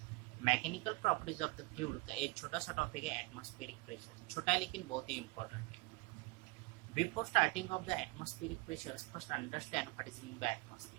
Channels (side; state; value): left; quieter; 24.9 dB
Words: Mechanical properties of the fluid का एक छोटा सा टॉपिक है atmospheric pressure. छोटा है लेकिन बहुत ही इंपॉर्टेंट है। Before starting of the atmospheric pressures first understand what is mean by